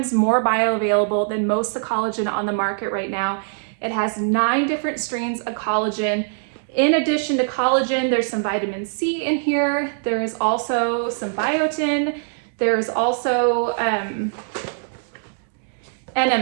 more bioavailable than most of the collagen on the market right now. It has 9 different strains of collagen. In addition to collagen, there's some vitamin C in here. There is also some biotin. There's also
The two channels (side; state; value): left; silent; digital silence